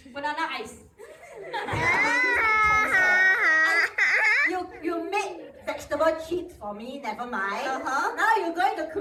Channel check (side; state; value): both; identical; correlation 1.00